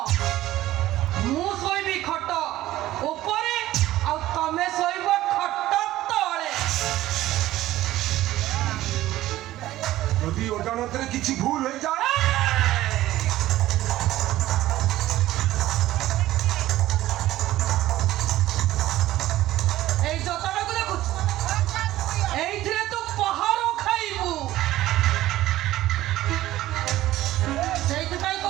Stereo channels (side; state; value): left; quieter; 15.2 dB